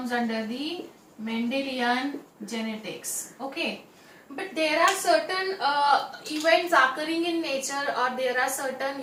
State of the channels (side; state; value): both; identical; correlation 1.00